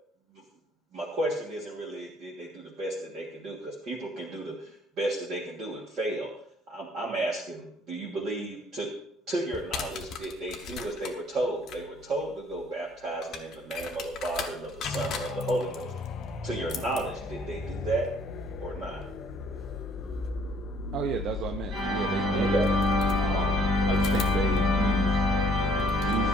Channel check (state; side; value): normal; both; correlation 0.61